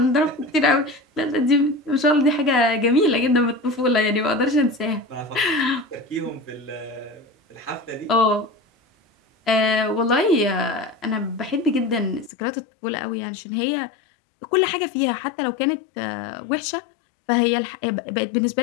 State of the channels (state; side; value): drops out; right; at 12.3 s